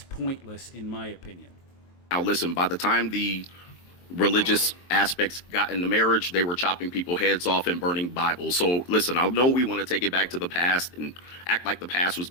pointless, in my opinion. Now, listen, by the time the religious aspects got into marriage, they were chopping people's heads off and burning Bibles. So listen, I know we want to take it back to the past and act like the past was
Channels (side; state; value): right; late; 23 ms